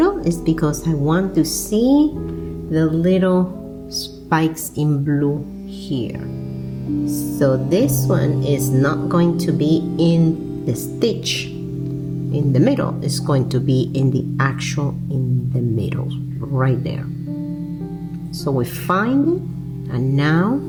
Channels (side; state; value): both; identical; correlation 1.00